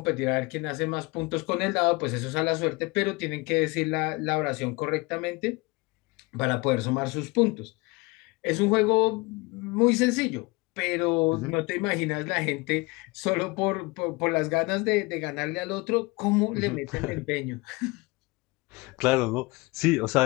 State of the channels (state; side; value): quieter; right; 24.9 dB